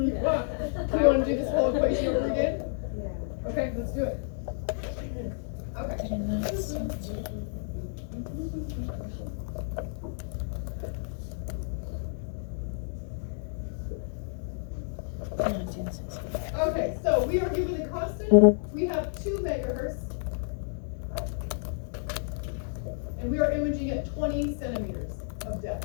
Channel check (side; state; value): right; silent; digital silence